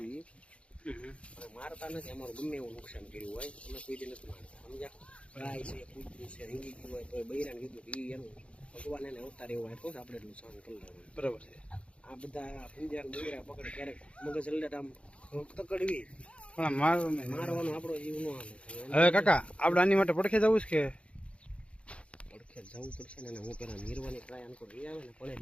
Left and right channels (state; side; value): late; right; 0.061 ms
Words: મારતા નથી। અમારું ગમે એવું નુકસાન કર્યું હોય અમે કોઈ દી નથી મારતા, સમજ્યા? ગાય છે, કૂતરું છે, રીંગી ગયું હોય તો બૈરાને કીધું કે એનું ભગવાન એને અવતાર એવો આપ્યો છે, આપણે એટલું સહન કરી લેવાનું। બરાબર છે। આ બધા પૂંજા બૈરા પકડે ક્યારેક મગજ અલ્લટ આમ તકડવી પણ મારવાનો આપણો જીવ નો હાલે। હવે કાકા આપણે આની માટે પડખે જવું છે કે પડખે જવું પડશે ને? હું પેલા નિર્વાની ટ્રાય આનકો લઈ આવે ને પડે